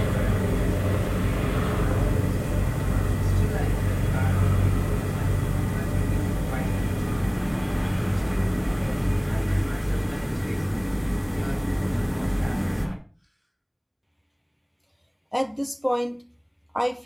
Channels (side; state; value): both; identical; correlation 1.00